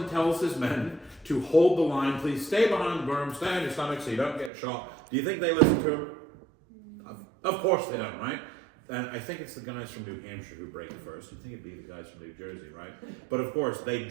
tells his men to hold the line. Please stay behind the berm, stay on your stomach so you don't get shot. Do you think they listen to him? Of course they don't, right? And I think it's the guys from New Hampshire who break first. You'd think it'd be the guys from New Jersey, right? But of course, they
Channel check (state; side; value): drops out; left; at 4.5 s